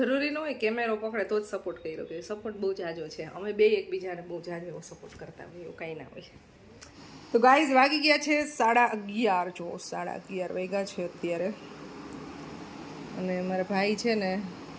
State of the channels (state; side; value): identical; both; correlation 1.00